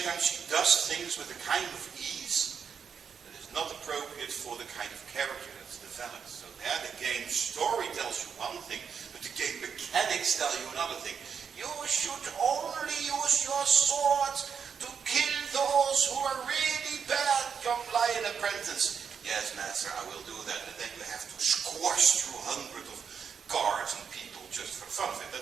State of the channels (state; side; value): quieter; left; 6.8 dB